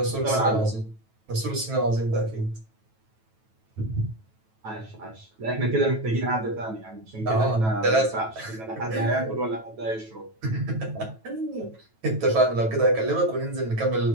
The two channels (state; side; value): late; left; 9.2 ms